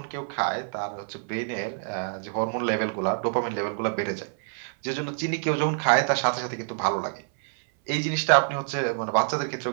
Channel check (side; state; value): left; silent; 60 dB below the other